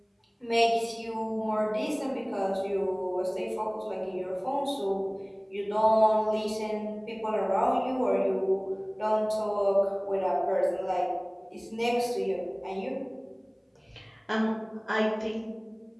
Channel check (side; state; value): both; identical; correlation 1.00